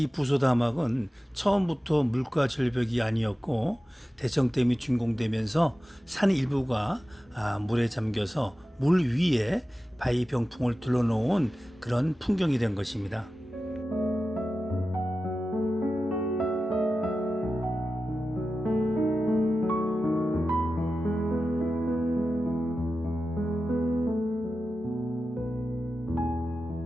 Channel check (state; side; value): normal; both; correlation 0.93